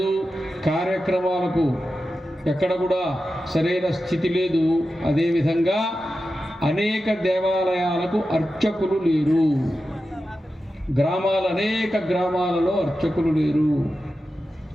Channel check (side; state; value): both; normal; correlation 0.92